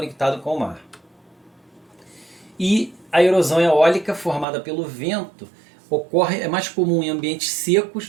com o mar. E a erosão eólica formada pelo vento é mais comum em ambientes secos,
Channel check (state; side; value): drops out; left; at 4.5 s